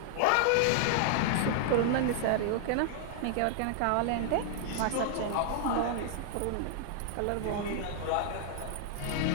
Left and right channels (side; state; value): both; different; correlation -0.01